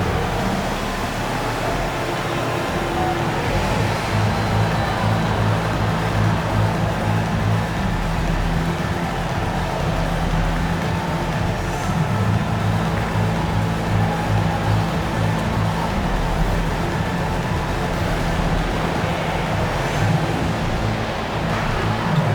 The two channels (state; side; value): identical; both; correlation 1.00